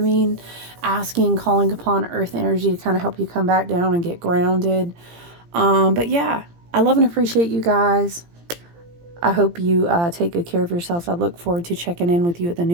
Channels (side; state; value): left; late; 17 ms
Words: Asking, calling upon earth energy to kind of help you come back down and get grounded. But yeah, I love and appreciate you guys. I hope you take good care of yourselves. I look forward to checking in with you at the